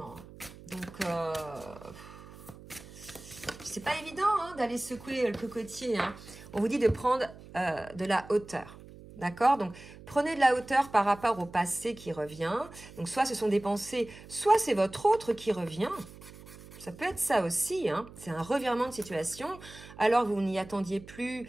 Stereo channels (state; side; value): noise; right; hum, 18 dB below the sound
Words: Donc, c'est pas évident hein, d'aller secouer le cocotier. Hein. On vous dit de prendre de la hauteur. D'accord? Donc, prenez de la hauteur par rapport au passé qui revient. Donc, soit ce sont des pensées, soit c'est votre autre qui revient. Ça peut être ça aussi, hein. C'est un revirement de situation. Alors, vous n'y attendiez plus,